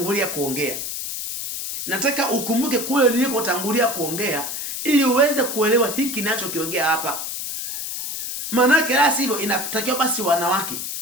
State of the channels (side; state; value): left; noise; hiss, 5 dB below the sound